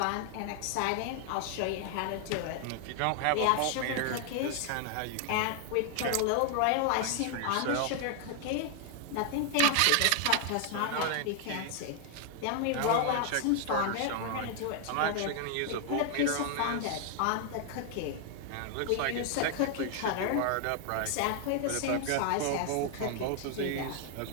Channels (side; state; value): both; different; correlation 0.00